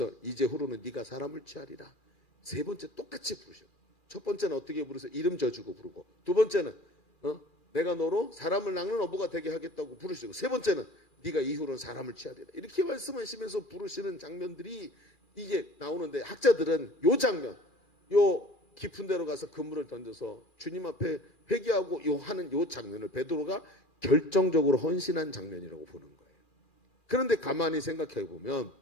이제후로는 네가 사람을 취하리라. 세 번째 똑같이 부르셔. 첫 번째는 어떻게 부르세요? 이름 져주고 부르고 두 번째는 내가 너로 사람을 낚는 어부가 되게 하겠다고 부르시고 세 번째는 네가 이후로는 사람을 취하리라. 이렇게 말씀하시면서 부르시는 장면들이 이게 나오는데 학자들은 요 장면 요 깊은 데로 가서 그물을 던져서 주님 앞에 회개하고 하는 요 장면을 베드로가 결정적으로 헌신한 장면이라고 보는 거예요. 그런데 가만히 생각해 보면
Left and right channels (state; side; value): late; right; 2.4 ms